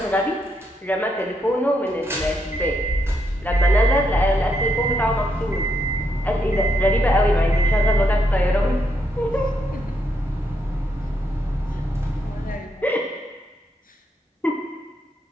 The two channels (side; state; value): both; normal; correlation 0.78